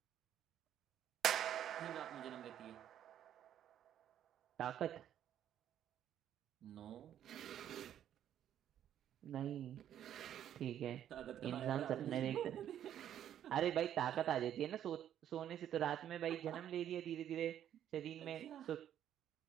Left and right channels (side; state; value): left; quieter; 10.5 dB